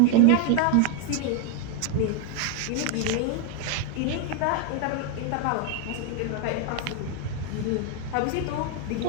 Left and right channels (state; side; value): different; both; correlation 0.01